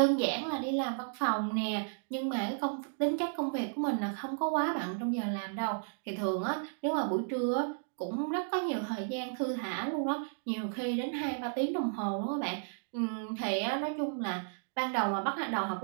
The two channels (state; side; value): silent; left; digital silence